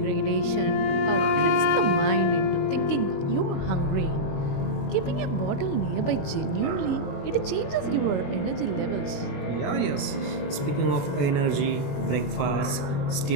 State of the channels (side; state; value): right; late; 21 ms